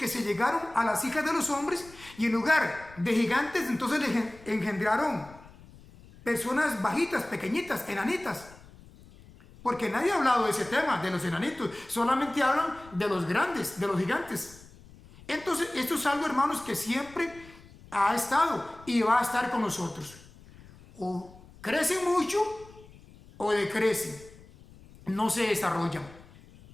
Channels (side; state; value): left; noise; rumble, 22 dB below the sound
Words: se llegaron a las hijas de los hombres y en lugar de gigantes entonces les engendraron personas bajitas, pequeñitas, enanitas. Porque nadie ha hablado de ese tema, de los enanitos. Solamente hablan de los grandes, de los gigantes. Entonces, esto es algo, hermanos, que siempre ha estado y va a estar con nosotros. O crecen mucho o decrecen. No se desarrollan.